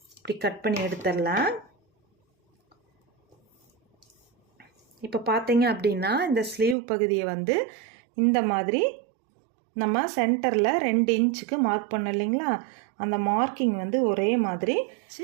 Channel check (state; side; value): drops out; left; at 6.8 s